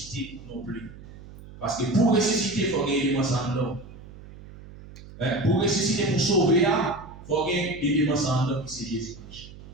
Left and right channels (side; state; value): right; noise; hum, 17 dB below the sound